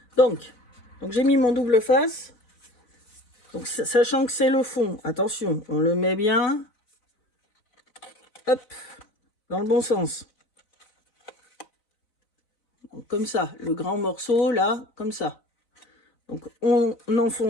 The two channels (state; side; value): late; right; 4.0 ms